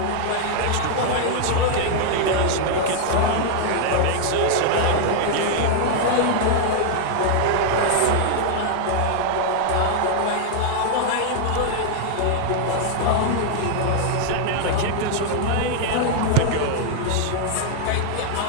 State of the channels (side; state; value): both; different; correlation -0.01